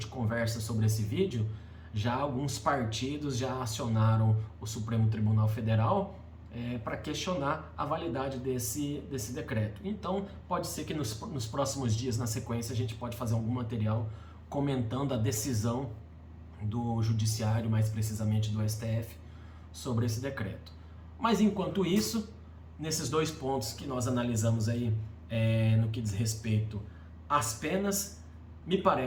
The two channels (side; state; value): both; identical; correlation 1.00